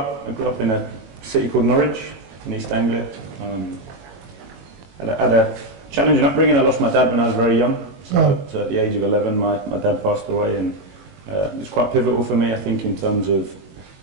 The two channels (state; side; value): late; left; 21 ms